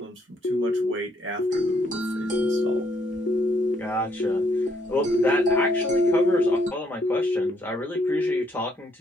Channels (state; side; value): normal; both; correlation 0.71